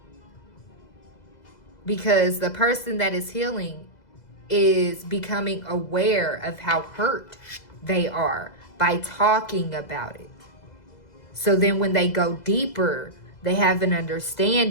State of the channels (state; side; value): late; right; 2.0 ms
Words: Because the person that is healing is becoming aware of how hurt they are by talking about it. So then when they go deeper, they have an